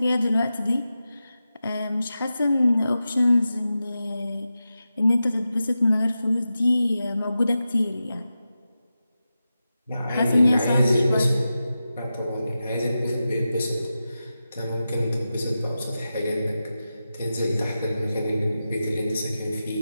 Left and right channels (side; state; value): both; inverted; correlation -0.92